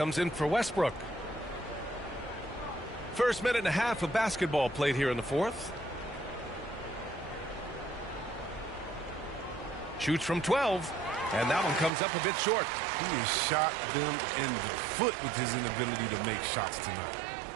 in for Westbrook. First minute and a half of basketball played here in the fourth. Shoots from 12. And that one comes up a bit short. He has shot them in the foot with his inability to make shots tonight.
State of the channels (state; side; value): drops out; left; at 11.9 s